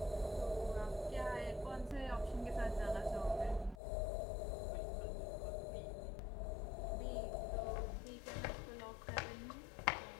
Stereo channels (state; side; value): drops out; right; at 3.8 s